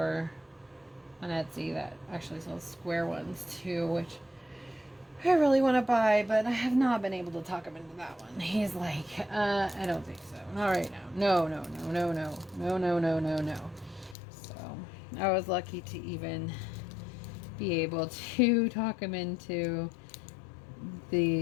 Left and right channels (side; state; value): right; drops out; at 14.2 s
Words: on Etsy that actually sells square ones too, which I really want to buy, but I have not been able to talk him into that one. He's like, I don't think so. Not right now. No. So I was lucky to even be able to talk him into